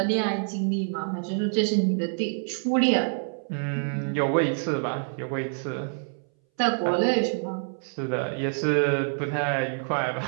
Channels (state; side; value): silent; left; 60 dB below the other